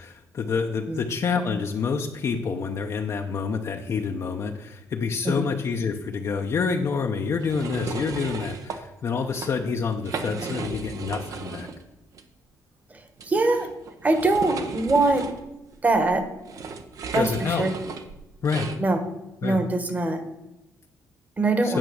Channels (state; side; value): normal; both; correlation 0.71